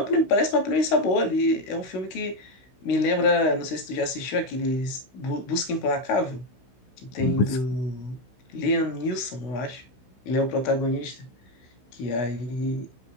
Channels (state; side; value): late; right; 16 ms